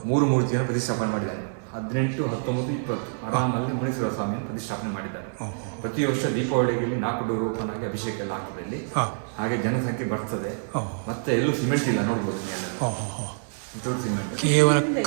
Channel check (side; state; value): left; silent; digital silence